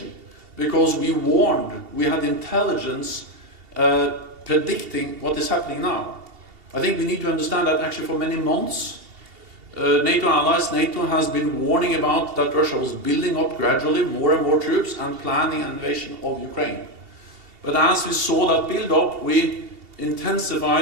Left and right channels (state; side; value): late; left; 2.7 ms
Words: because we warned, we had intelligence predicting what is happening now. I think we need to understand that actually for many months, NATO has been warning about that Russia was building up gradually more and more troops and planning an invasion of Ukraine. But as we saw that build up, we